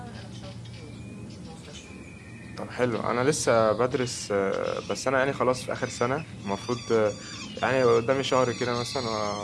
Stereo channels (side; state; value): both; identical; correlation 1.00